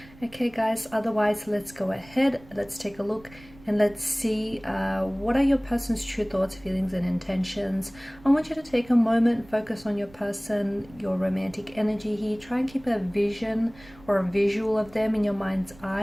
Okay guys, otherwise let's go ahead, let's take a look and let's see what are your person's true thoughts, feelings and intentions. I want you to take a moment, focus on your person, your romantic energy here. Try and keep a vision or a visual of them in your mind's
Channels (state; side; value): noise; right; rumble, 23 dB below the sound